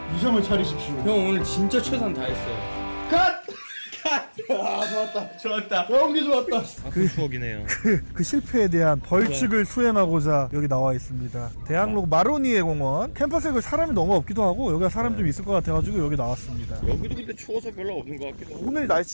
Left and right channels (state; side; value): inverted; both; correlation -1.00